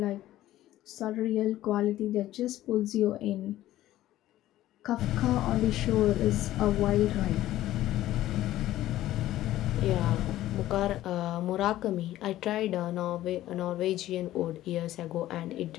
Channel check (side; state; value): right; quieter; 14.4 dB